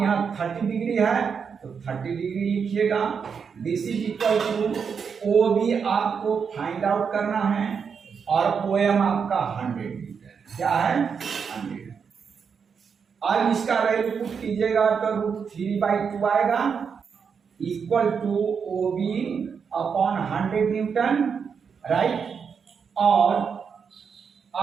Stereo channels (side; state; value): left; quieter; 6.3 dB